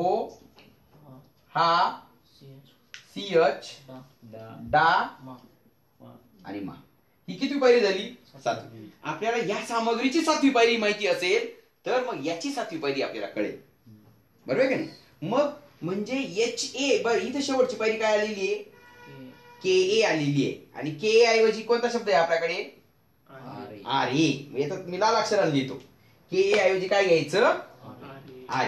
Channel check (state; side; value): identical; both; correlation 1.00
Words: हा, सीएच, डा आणि मा. ही किती पायरी झाली? 7वी. आपल्याला या सामग्रीची 7वी पायरी माहिती असेल तर मग याची 7वी पायरी आपल्याला कळेल. बरोबर आहे का नाही? मग म्हणजे एच ए, बरं इथे शेवटची पायरी काय आलेली आहे, के ए आलेली आहे. आणि के ए ऐवजी कोणता शब्द आहे आपल्याकडे? R A. याच्यात मी लाल अक्षराने लिहितो. के ए ऐवजी काय घ्यायचं? R